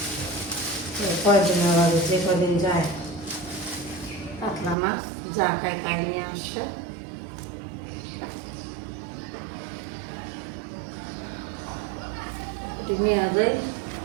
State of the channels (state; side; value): drops out; left; at 4.8 s